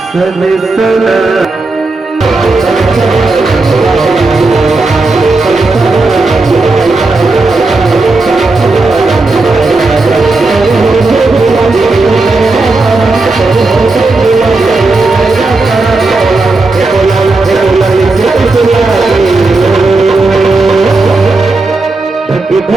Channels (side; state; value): left; quieter; 3.4 dB